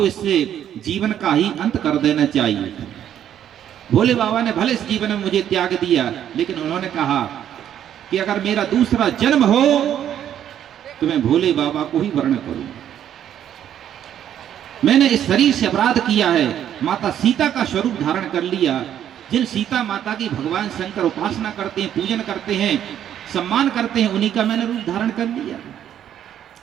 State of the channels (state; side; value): quieter; left; 10.3 dB